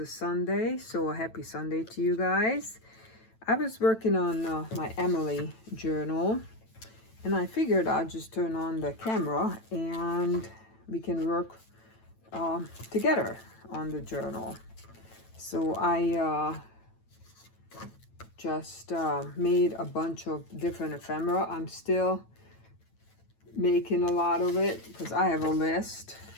Sunday, so a happy Sunday to you guys. I was working on my Emily journal, and I figured I'd just turn on the camera and we can work together on the journal. So I just made a bunch of different ephemera. I'm still making a lot of it because I have a list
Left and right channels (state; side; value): late; right; 9.0 ms